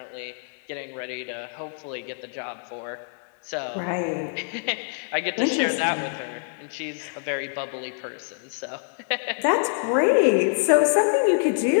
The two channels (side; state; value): right; silent; digital silence